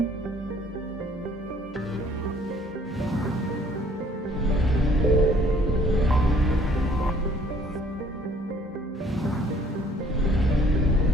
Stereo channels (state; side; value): normal; both; correlation 0.59